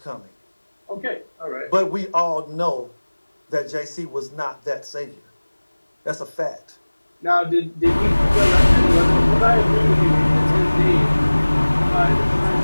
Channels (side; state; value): both; inverted; correlation -1.00